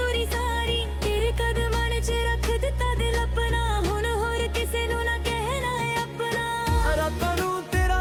दूरी सारी तेरे कदमां च रख दिता दिल अपना हुण होर किसे नू ना कहना है अपना रातां नूं तेरा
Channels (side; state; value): both; identical; correlation 1.00